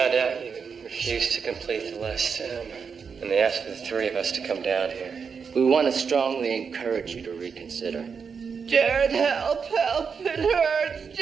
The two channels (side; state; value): left; quieter; 6.0 dB